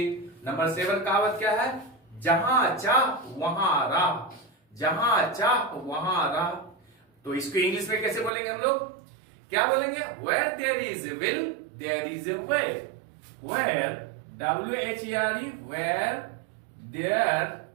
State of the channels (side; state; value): left; drops out; at 8.3 s